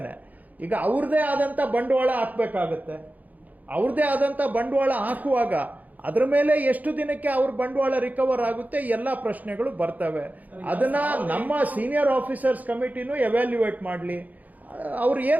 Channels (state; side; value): late; left; 0.079 ms